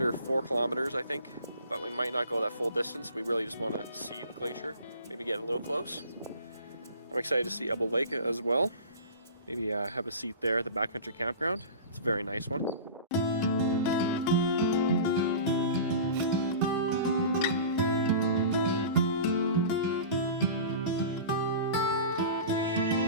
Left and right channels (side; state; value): both; inverted; correlation -0.37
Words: 4 kilometers, I think, but we might not go that full distance. We really just want to see the glacier, maybe get a little close. I'm excited to see Elbow Lake as well. Maybe have a seat there at the backcountry campground. It's a very nice one.